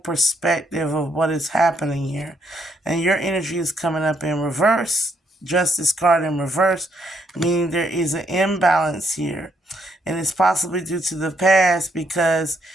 of what is happening here. And your energy is coming up in reverse. Justice card in reverse, meaning there is an imbalance here. And it's possibly due to the past, because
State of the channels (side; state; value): both; normal; correlation 0.73